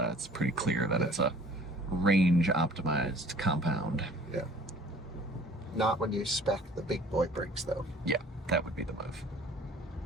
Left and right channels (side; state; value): both; normal; correlation 0.51